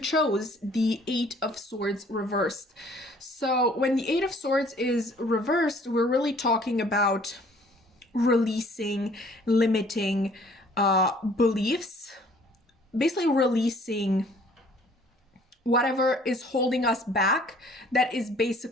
the 8 of Swords reversed. So when the 8 of Swords is reversed, we're really talking about releasing limiting beliefs, basically releasing whatever is holding us back that is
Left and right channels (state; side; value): normal; both; correlation 0.56